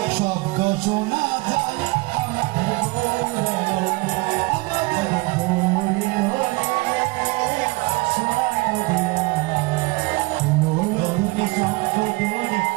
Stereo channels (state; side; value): quieter; left; 25.0 dB